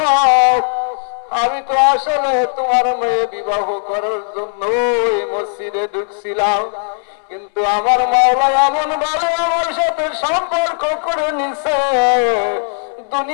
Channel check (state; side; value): silent; right; 69 dB below the other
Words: আমি তো আসলে তোমার মেয়ে বিবাহ করার জন্য এই মসজিদে ঢুকছিলাম, কিন্তু আমার মাওলা এমন ভাবে আমার সাথে সম্পর্ক করে নিছে,